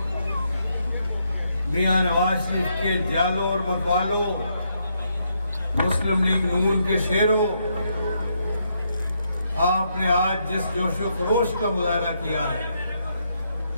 میاں نواز شریف کے جالوں اور متوالوں، مسلم لیگ نون کے شیروں، آپ نے آج جس جوش و خروش کا مظاہرہ کیا ہے،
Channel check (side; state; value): both; inverted; correlation -0.77